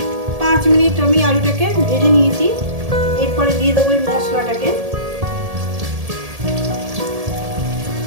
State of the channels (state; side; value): late; left; 1.7 ms